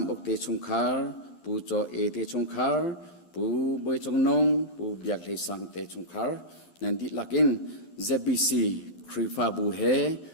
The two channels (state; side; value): late; right; 11 ms